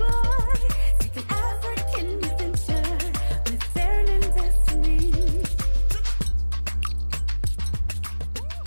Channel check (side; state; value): both; inverted; correlation -1.00